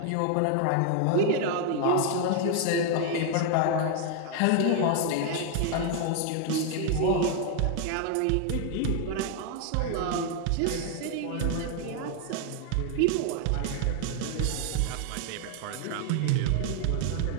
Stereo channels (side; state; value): both; different; correlation 0.00